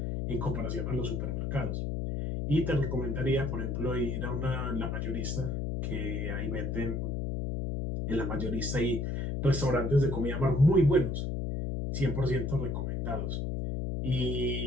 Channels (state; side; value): noise; left; hum, 1 dB below the sound